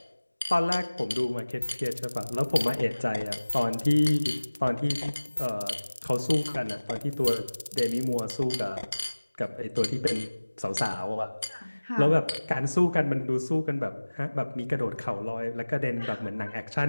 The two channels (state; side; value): inverted; both; correlation -1.00